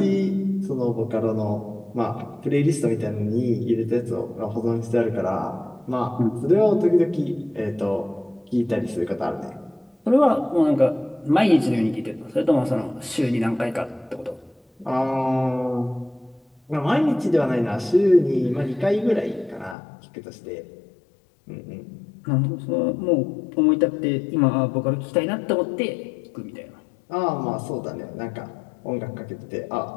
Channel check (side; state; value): right; drops out; at 19.8 s